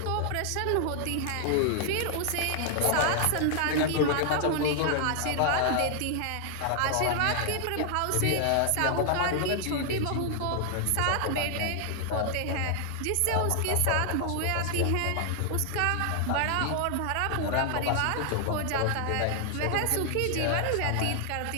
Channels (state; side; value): different; both; correlation 0.00